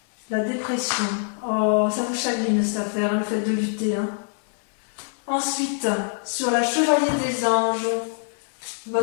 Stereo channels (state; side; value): silent; right; digital silence